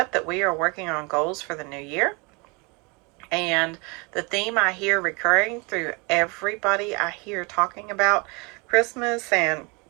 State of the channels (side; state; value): left; quieter; 29.4 dB